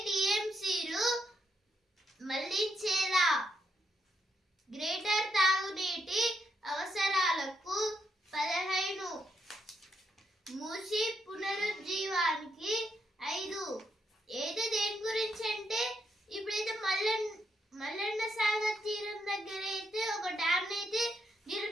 టీఎంసీలు మళ్లించేలా గ్రేటర్ తాగునీటి అవసరాలకు 15, మూసి పునరుజ్జీవానికి 5. ఏదో దేని గురించి అంటే ఇప్పుడైతే మల్లన్న సాగర్ తీరం దగ్గర అయితే ఒక డ్యామ్ అయితే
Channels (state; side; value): normal; both; correlation 0.79